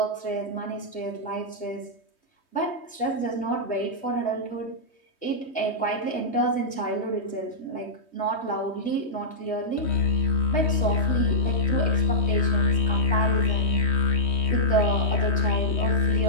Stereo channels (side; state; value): right; late; 3.2 ms